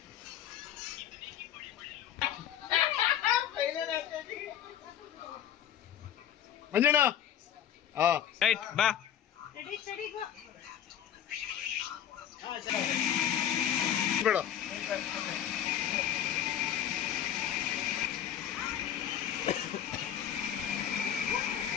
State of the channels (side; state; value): right; quieter; 10.2 dB